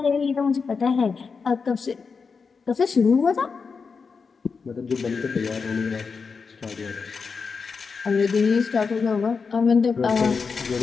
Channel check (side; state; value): right; quieter; 5.2 dB